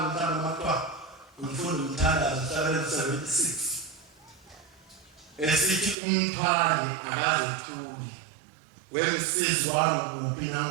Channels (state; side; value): drops out; left; at 6.0 s